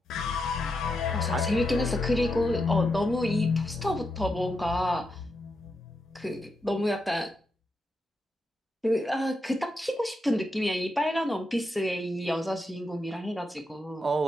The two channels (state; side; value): normal; both; correlation 0.84